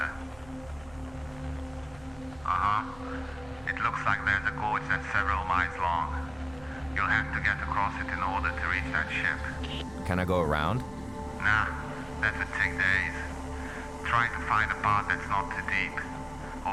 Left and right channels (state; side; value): noise; right; rumble, 22 dB below the sound